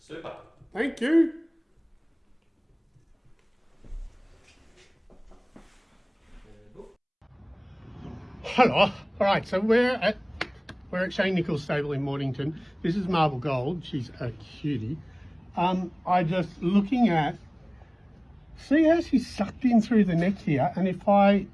Thank you. Hello. All right, so we're at Shane Nichols' stable in Mornington. This is Marble Gold. She's a cutie. I just looking at, see how she's sucked in through the neck here, and if I,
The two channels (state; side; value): identical; both; correlation 1.00